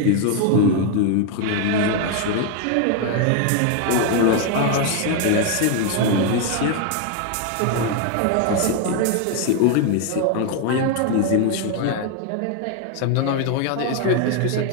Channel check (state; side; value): different; both; correlation 0.01